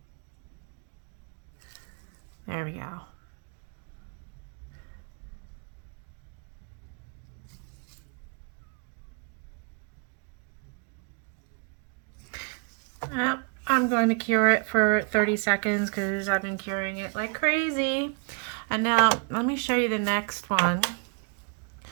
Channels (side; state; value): left; quieter; 38.4 dB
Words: There we go. I'm going to cure it for 30 seconds because I've been curing it like crazy. And now let me show you the next one